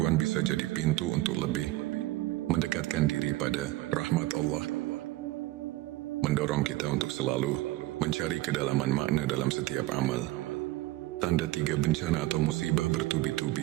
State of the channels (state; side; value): quieter; left; 17.7 dB